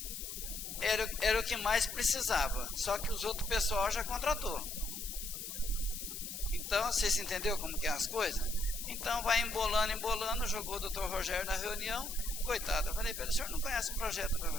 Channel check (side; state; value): left; noise; hiss, 7 dB below the sound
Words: Era o que mais precisava, só que os outros pessoal já contratou. Então, vocês entenderam como que é as coisas? Então, vai embolando, jogou o doutor Rogério na reunião, coitado. Eu falei para ele, o senhor não conhece o projeto do